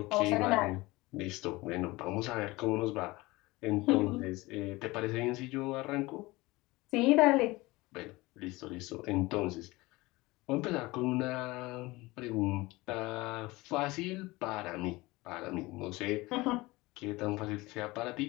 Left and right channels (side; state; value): right; quieter; 21.3 dB